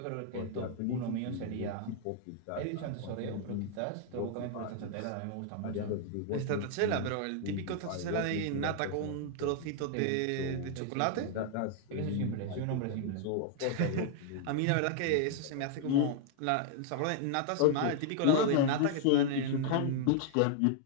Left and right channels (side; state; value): both; different; correlation 0.00